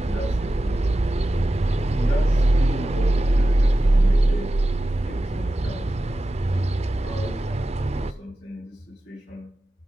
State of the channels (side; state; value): both; normal; correlation 0.93